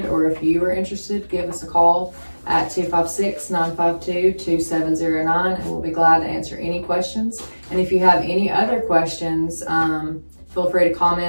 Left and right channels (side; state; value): both; inverted; correlation -1.00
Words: or if you are interested, give us a call at 256-952-2709, and we'll be glad to answer any questions. And if you have any other questions, feel free to